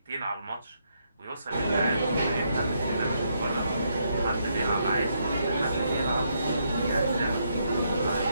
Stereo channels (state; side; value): inverted; both; correlation -0.76